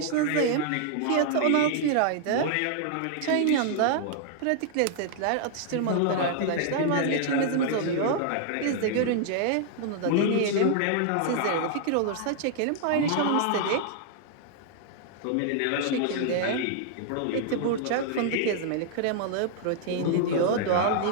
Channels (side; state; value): both; different; correlation -0.01